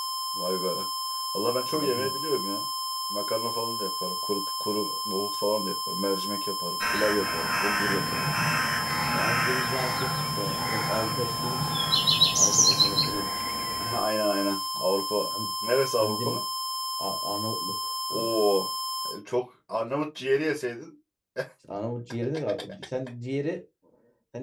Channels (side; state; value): both; identical; correlation 1.00